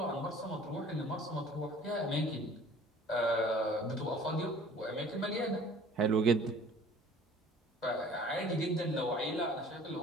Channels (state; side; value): normal; both; correlation 0.49